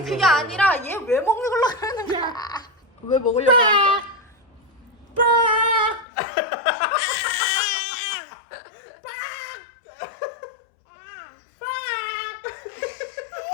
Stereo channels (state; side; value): drops out; right; at 6.1 s